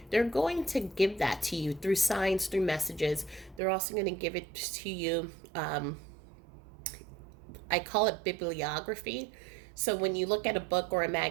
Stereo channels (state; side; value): drops out; left; at 3.6 s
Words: They're going to give that to you through signs, through messages. They're also going to give it to you. I call it bibliography. So when you look at a book or a